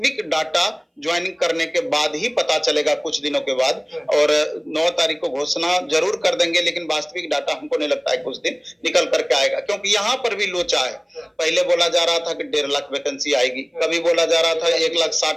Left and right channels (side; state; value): both; identical; correlation 1.00